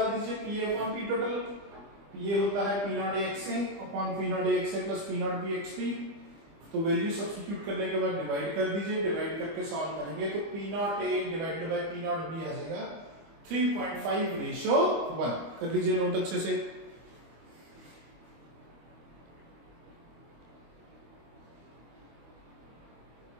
दीजिए, P A upon P total. P A होता है P naught A x A upon P naught A x A plus P naught B x B. तो वैल्यू सब्स्टिट्यूट करने के बाद डिवाइड कर दीजिए, डिवाइड करके सॉल्व करेंगे तो P naught A divided by P naught B आ जाएगा 3.5 रेशियो 1। कर लीजिए नोट अच्छे से।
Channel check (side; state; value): left; late; 25 ms